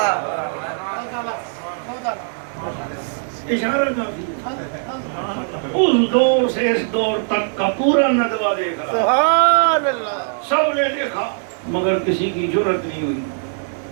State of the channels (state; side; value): silent; left; 65 dB below the other